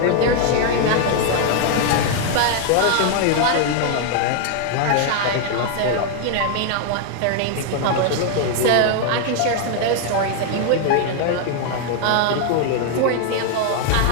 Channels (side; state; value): both; different; correlation 0.00